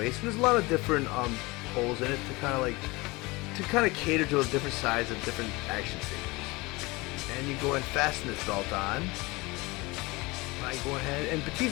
and there's a lot of different holes in it to kind of cater to a different size of different action figures. And you go and fasten this belt on. I go ahead, and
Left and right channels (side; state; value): right; quieter; 23.6 dB